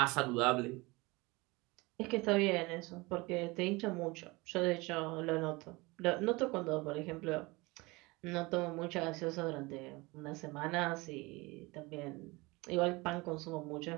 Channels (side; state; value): left; quieter; 23.9 dB